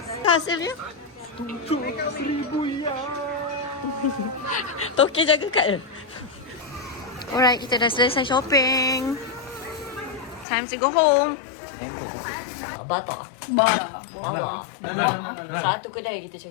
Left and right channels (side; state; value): right; drops out; at 10.5 s